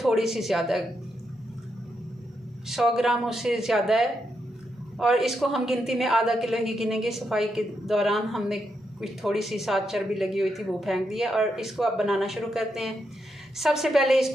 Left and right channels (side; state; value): both; normal; correlation 0.82